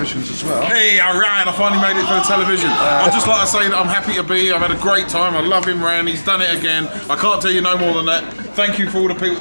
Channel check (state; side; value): inverted; both; correlation -1.00